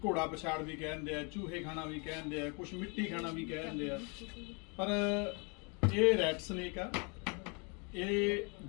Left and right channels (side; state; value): right; quieter; 33.6 dB